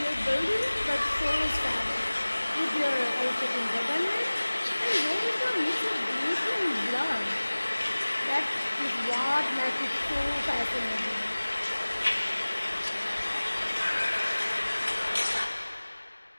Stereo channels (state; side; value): inverted; both; correlation -1.00